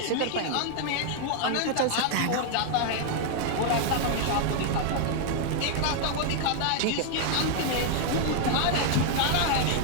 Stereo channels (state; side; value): different; both; correlation 0.00